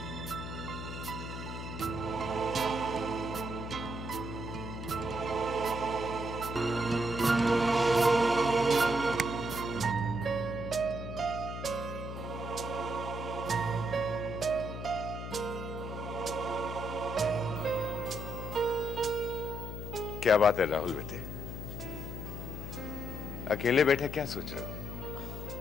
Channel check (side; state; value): left; noise; hum, 7 dB below the sound